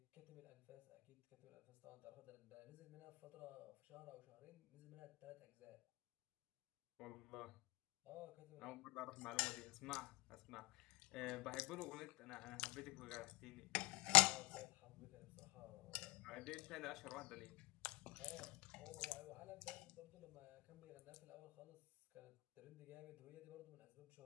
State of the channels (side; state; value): right; quieter; 21.0 dB